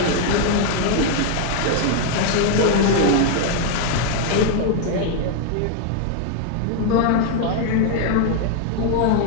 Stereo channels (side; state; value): both; different; correlation 0.00